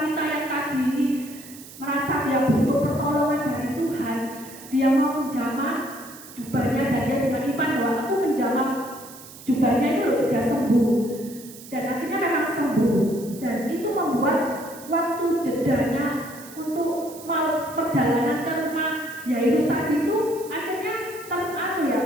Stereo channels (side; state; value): right; noise; hiss, 17 dB below the sound